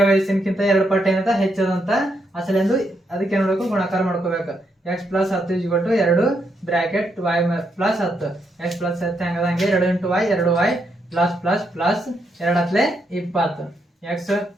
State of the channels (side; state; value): both; normal; correlation 0.79